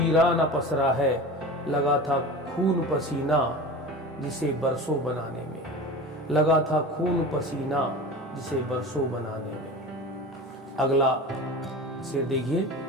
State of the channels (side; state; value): both; normal; correlation 0.33